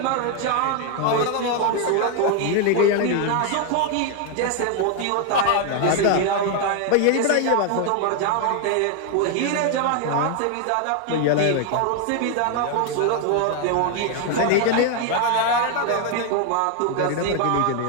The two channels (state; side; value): different; both; correlation 0.01